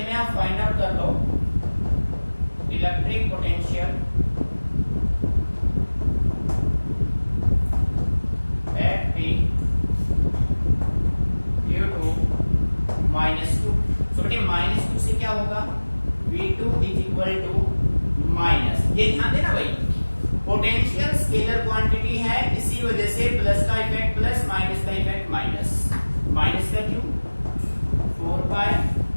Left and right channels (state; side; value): inverted; both; correlation -1.00